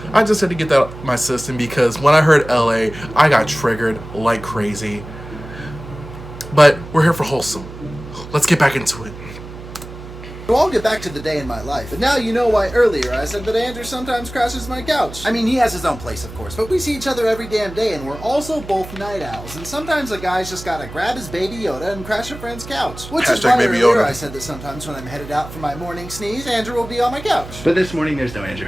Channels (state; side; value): noise; right; hum, 14 dB below the sound